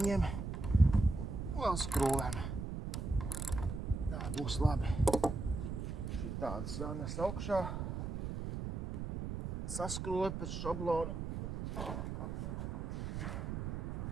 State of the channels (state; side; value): noise; right; rumble, 4 dB below the sound